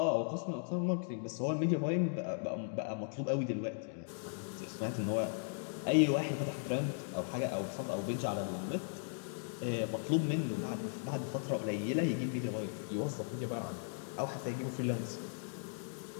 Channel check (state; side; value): silent; right; digital silence